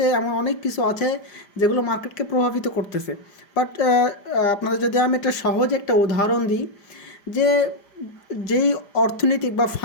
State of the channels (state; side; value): late; right; 5.0 ms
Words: এমন অনেক কিছু আছে যেগুলো মার্কেটকে প্রভাবিত করতেছে। বাট আপনাদের যদি আমি একটা সহজ একটা উদাহরণ দিই, যে যেই অর্থনৈতিক বা